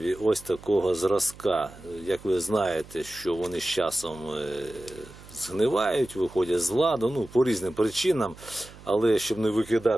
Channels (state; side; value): noise; right; hum, 20 dB below the sound